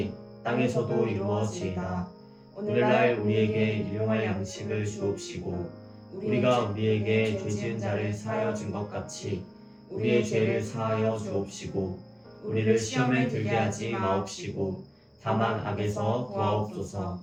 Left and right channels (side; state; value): both; identical; correlation 1.00